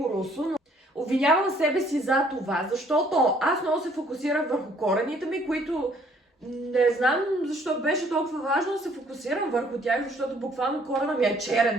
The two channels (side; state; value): both; normal; correlation 0.62